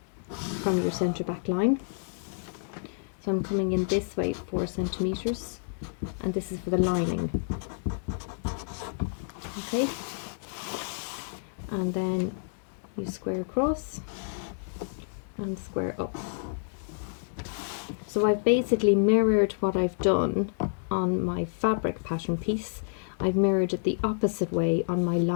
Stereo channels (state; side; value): silent; right; digital silence